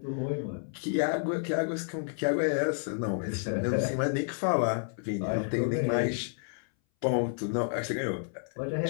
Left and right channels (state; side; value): silent; right; 58 dB below the other